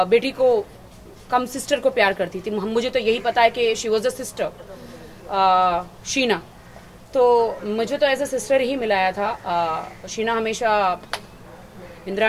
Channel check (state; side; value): identical; both; correlation 1.00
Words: बेटी को कम सिस्टर को प्यार करती थी। मुझे तो यही पता है कि she was a sister Sheena, तो मुझे तो एज अ सिस्टर ही मिलाया था। शीना हमेशा